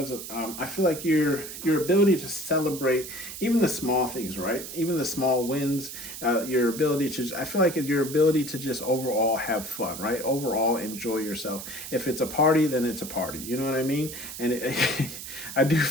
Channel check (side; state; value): right; noise; hiss, 10 dB below the sound